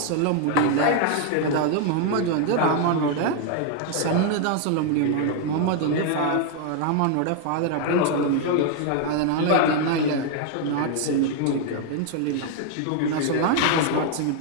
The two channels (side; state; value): both; different; correlation 0.00